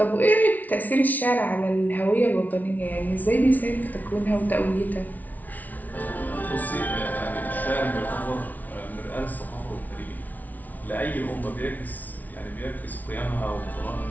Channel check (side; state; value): right; late; 0.077 ms